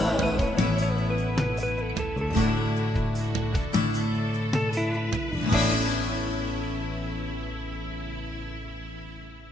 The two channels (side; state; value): both; normal; correlation 0.77